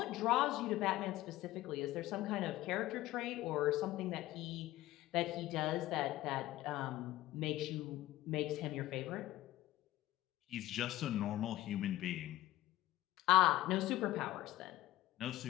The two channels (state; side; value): quieter; right; 16.0 dB